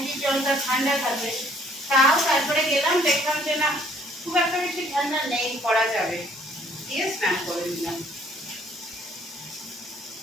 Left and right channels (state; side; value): normal; both; correlation 0.61